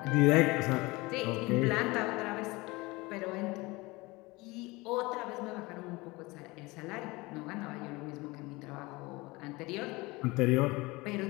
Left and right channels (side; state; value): right; quieter; 22.9 dB